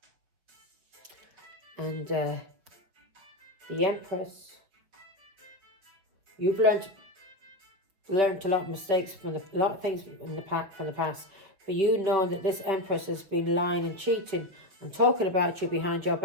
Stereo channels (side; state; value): left; late; 5.2 ms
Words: And the empress, you've learned a lot of mistakes from a lot of things from the past. For you know that this empress has been lying and cheating and talking about you behind your